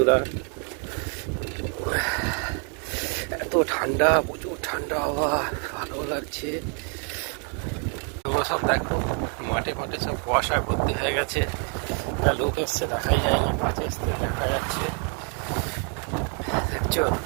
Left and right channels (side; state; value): left; quieter; 39.8 dB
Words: এত ঠান্ডা, প্রচুর ঠান্ডা হাওয়া, ভালো লাগছে। তোমরা সব দেখো, মাঠে মাঠে সব কুয়াশায় ভর্তি হয়ে গেছে। একটা লোক এসছে, দেখাই যায়নি, মাঠে এসছে দেখা যাচ্ছে, দেখছো